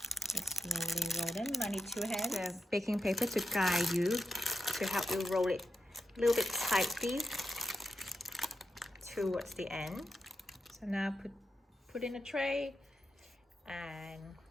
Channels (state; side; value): normal; both; correlation 0.87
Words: Just slowly roll them. I need 2 hands. The baking paper to guide you, to help you roll it a little bit tightly towards the end. So now put in a tray, and